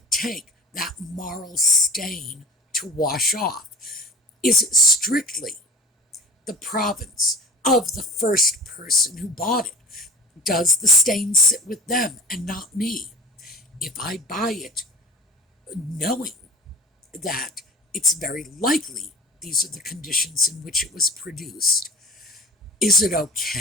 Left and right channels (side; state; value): both; normal; correlation 0.41